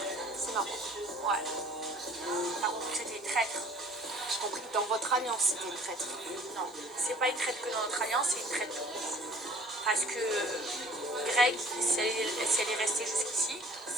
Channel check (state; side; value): normal; both; correlation 0.53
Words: c'est marrant. Ouais. T'as compris que c'était une traître. J'ai compris que dans votre alliance, c'était une traître. Non, c'est pas une traite que dans notre alliance, c'est une traite tout court. Parce que Greg, si elle est restée jusqu'ici,